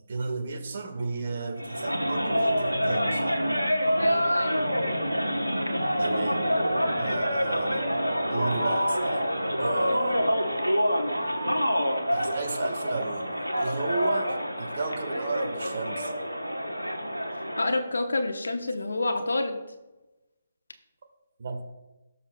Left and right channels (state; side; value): inverted; both; correlation -0.92